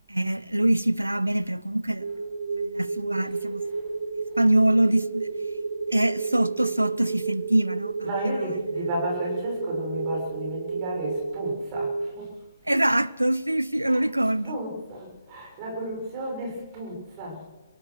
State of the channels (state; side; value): inverted; both; correlation -0.93